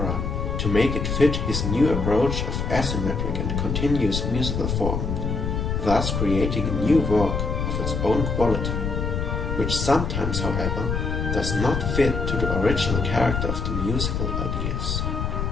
to make it fit his new approach of asymmetric and continuous musical form, thus creating a new work of its own quality, which sometimes, however, does not fit to the original character of the musical ideas.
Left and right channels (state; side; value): noise; left; rumble, 1 dB below the sound